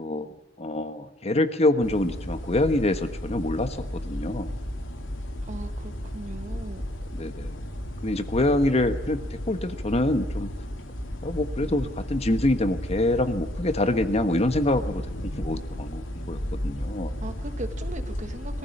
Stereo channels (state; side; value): normal; both; correlation 0.65